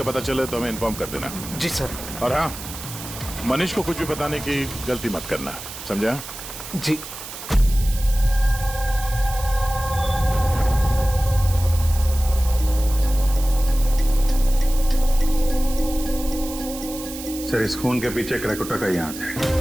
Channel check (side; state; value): right; noise; hiss, 11 dB below the sound